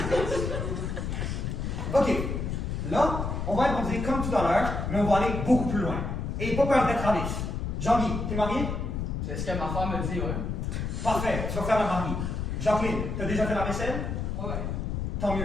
Ok, là, on va improviser comme tout à l'heure, mais on va aller beaucoup plus loin. Et pas peur d'être à l'aise. Jean-Guy, t'es marié? C'est ce que ma femme me dit, ouais. Parfait, tu vas faire le mari. Jacqueline, t'as déjà fait la vaisselle? Ouais. Tant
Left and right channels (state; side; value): noise; left; rumble, 2 dB below the sound